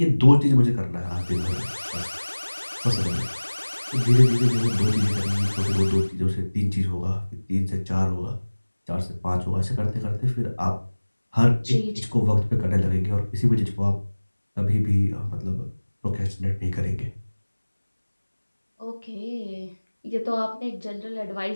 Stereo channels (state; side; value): inverted; both; correlation -1.00